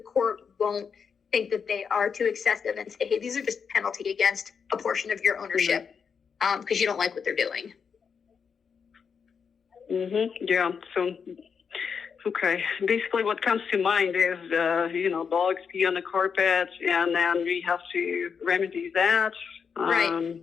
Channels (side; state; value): right; quieter; 6.3 dB